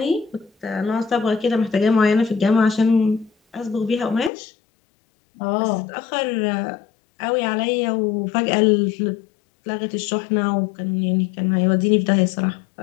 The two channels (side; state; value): right; drops out; at 4.3 s